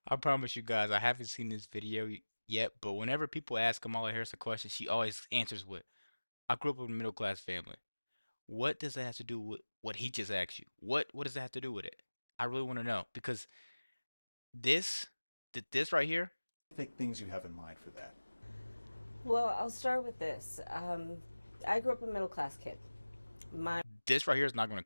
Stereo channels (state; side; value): inverted; both; correlation -1.00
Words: I promise you guys, I haven't seen this video yet, but whenever people ask Kamala Harris a question, she always answers with, I grew up in a middle-class family. What does that have to do with what he just asked you? What does that have to do with it? I really want to know because this, this right here, Specific things you have in mind for that. Well, I'll start with this. I grew up a middle-class kid. My this right here is not going to